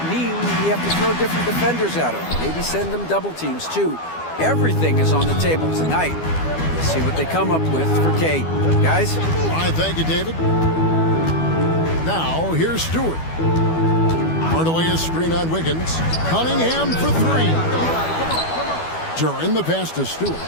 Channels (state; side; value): late; right; 12 ms